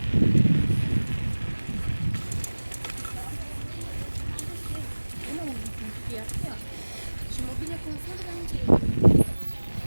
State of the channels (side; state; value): both; inverted; correlation -1.00